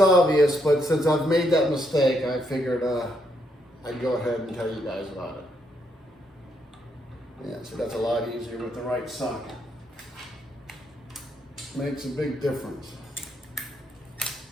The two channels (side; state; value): both; normal; correlation 0.76